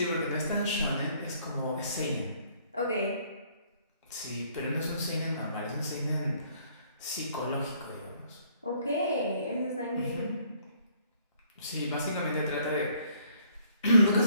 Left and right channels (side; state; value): both; inverted; correlation -0.63